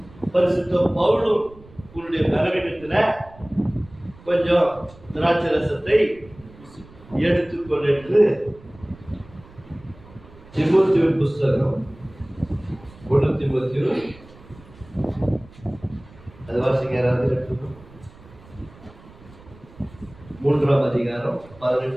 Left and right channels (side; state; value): right; noise; rumble, 22 dB below the sound